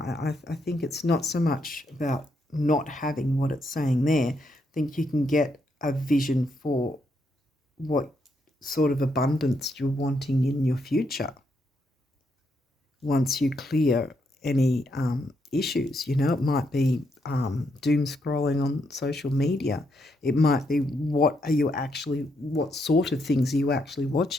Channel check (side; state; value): both; normal; correlation 0.78